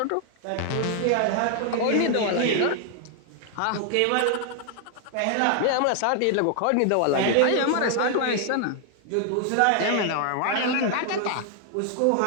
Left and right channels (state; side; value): different; both; correlation 0.00